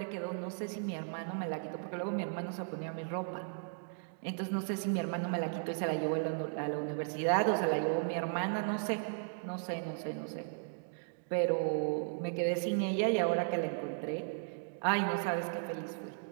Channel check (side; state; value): left; silent; digital silence